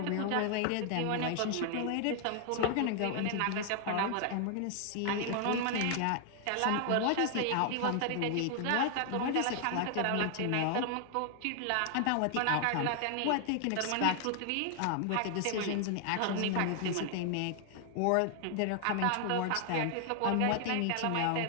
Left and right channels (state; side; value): different; both; correlation 0.00